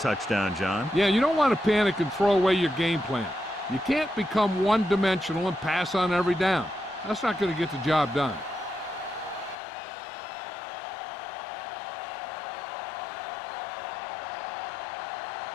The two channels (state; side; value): drops out; right; at 9.6 s